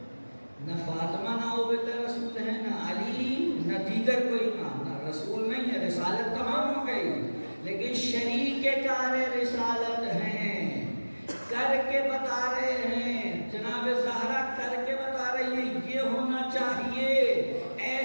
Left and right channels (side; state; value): both; inverted; correlation -1.00